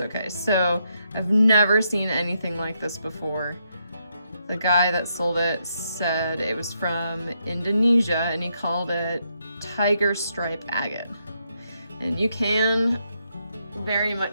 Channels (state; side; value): inverted; both; correlation -0.78